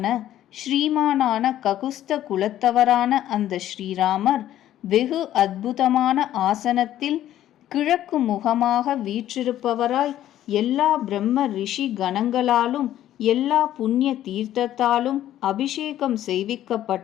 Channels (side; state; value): right; quieter; 12.5 dB